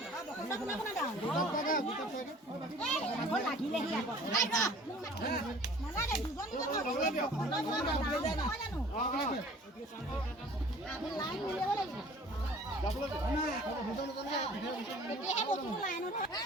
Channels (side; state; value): both; normal; correlation 0.49